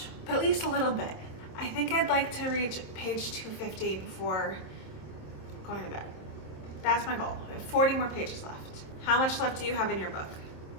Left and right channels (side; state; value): right; late; 26 ms